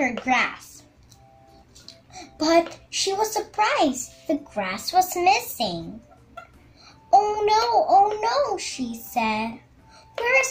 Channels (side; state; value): both; identical; correlation 1.00